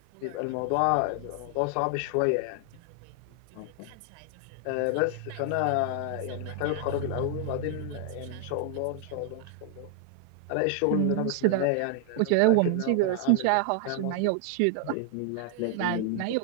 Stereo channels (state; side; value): different; both; correlation 0.00